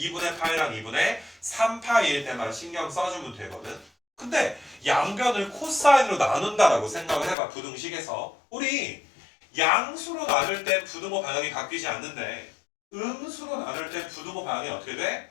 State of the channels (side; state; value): right; drops out; at 7.4 s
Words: 파이랑 2분의 3파이일 때만 신경 써주면 되거든. 근데 양변을 코사인으로 나눈다라고 생각을 해봐. 부등식에서 우리 양수로 나눌 때 부등호 방향이 바뀌지 않는데 음수로 나눌 때 부등호 방향이 어떻게 돼?